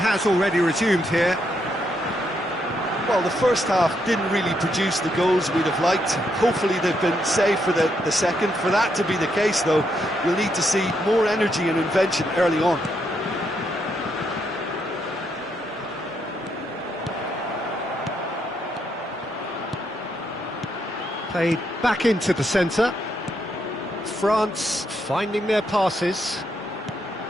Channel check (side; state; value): both; normal; correlation 0.77